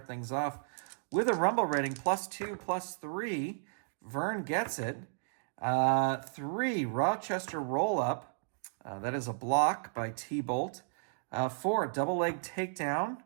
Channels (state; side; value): silent; left; digital silence